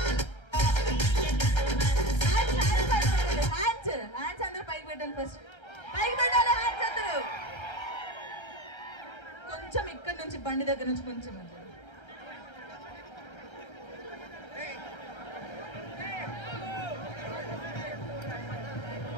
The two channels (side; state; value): right; late; 1.3 ms